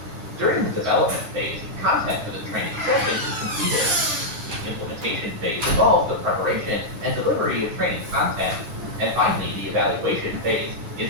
During the development phase, content for the training session is completed. The implementation phase involves the preparation and delivery of training content. And finally, the evaluation phase is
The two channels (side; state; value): left; late; 9.2 ms